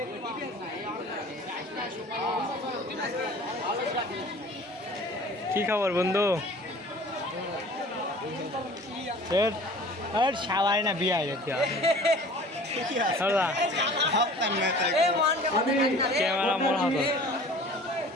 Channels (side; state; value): both; normal; correlation 0.45